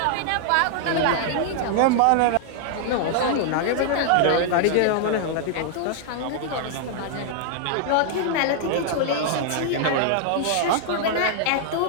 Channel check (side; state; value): both; different; correlation 0.00